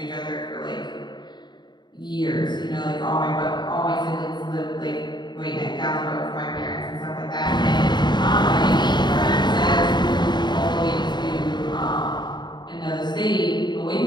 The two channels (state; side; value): late; right; 0.21 ms